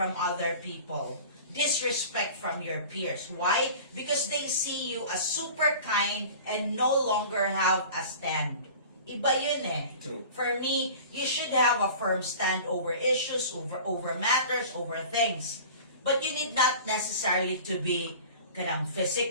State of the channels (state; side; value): inverted; both; correlation -0.40